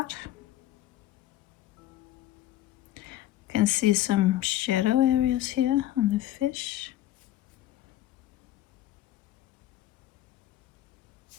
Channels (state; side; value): quieter; right; 13.6 dB